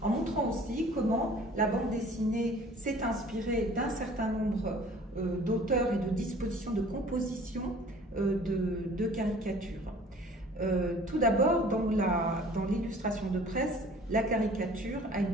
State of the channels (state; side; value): normal; both; correlation 0.50